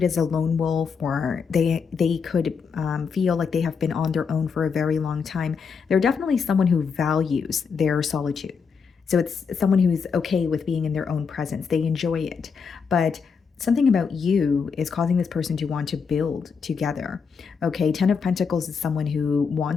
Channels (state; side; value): quieter; right; 5.8 dB